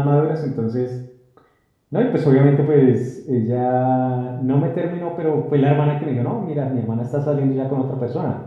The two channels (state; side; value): identical; both; correlation 1.00